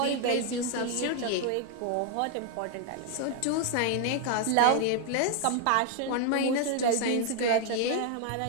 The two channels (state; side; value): different; both; correlation 0.00